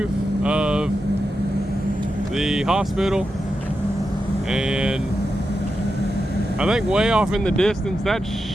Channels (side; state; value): both; normal; correlation 0.89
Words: of the hospital, and I think way off in the distance, that's